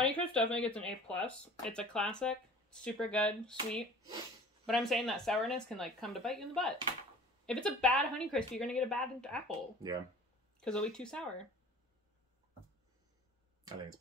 definitely gets an A+. It's a classic, super good, sweet. But I'm saying that sourness can like come to bite you in the butt. If it's a bad Honeycrisp, you're gonna get a bad apple. Yeah. Because it'll be too sour. I think it's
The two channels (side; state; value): both; normal; correlation 0.45